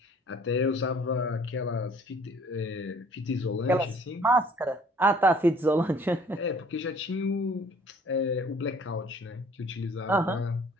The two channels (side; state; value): both; normal; correlation 0.55